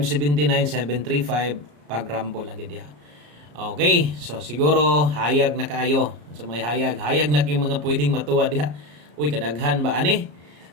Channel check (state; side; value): late; left; 34 ms